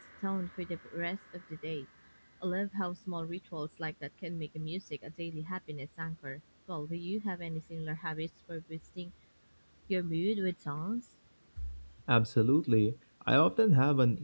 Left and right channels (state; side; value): inverted; both; correlation -1.00